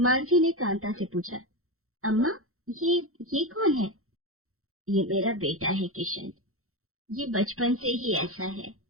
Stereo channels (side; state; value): left; late; 0.63 ms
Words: ने कांता से पूछा, अम्मा, ये कौन है? ये मेरा बेटा है किशन, ये बचपन से ही ऐसा है,